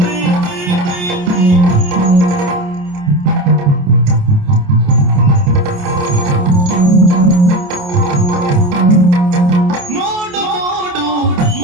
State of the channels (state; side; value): late; left; 28 ms